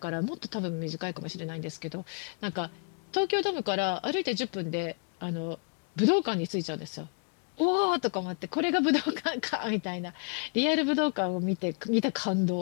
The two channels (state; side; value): quieter; right; 38.0 dB